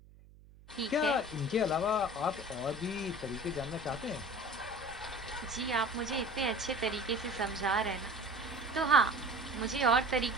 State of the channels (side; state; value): right; noise; hum, 23 dB below the sound